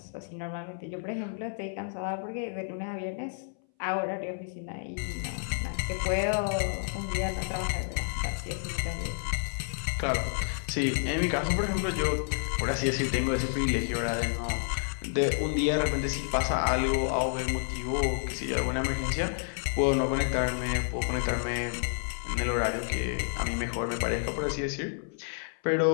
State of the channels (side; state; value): right; silent; 58 dB below the other